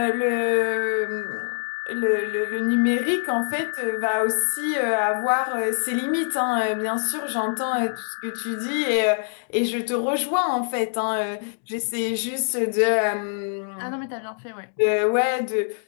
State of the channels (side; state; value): right; silent; digital silence